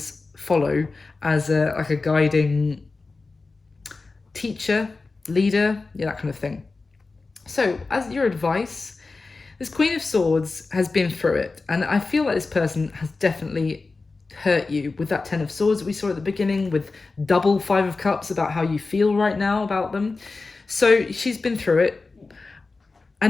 follow as like a guiding teacher, leader, yeah, that kind of thing. So as your advice, this Queen of Swords has been through it, and I feel like this person has definitely hurt you with that Ten of Swords that we saw at the beginning, with double Five of Cups about how you feel right now about them. So she's been through it,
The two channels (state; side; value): quieter; right; 3.8 dB